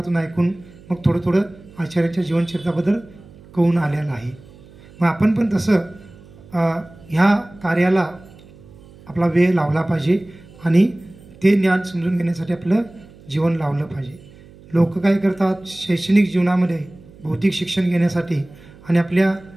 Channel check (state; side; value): noise; right; hum, 22 dB below the sound